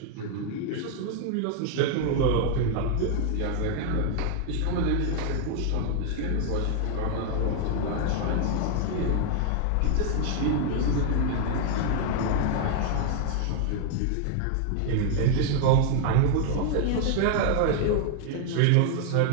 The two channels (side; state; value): both; different; correlation 0.00